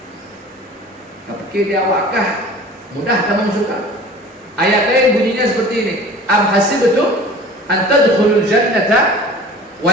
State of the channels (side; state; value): both; normal; correlation 0.42